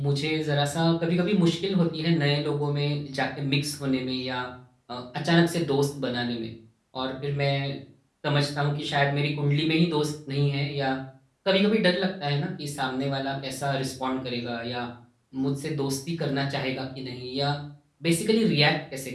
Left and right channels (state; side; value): identical; both; correlation 1.00